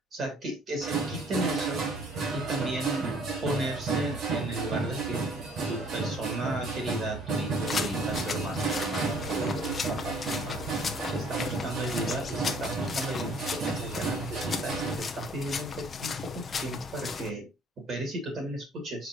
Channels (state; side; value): normal; both; correlation 0.57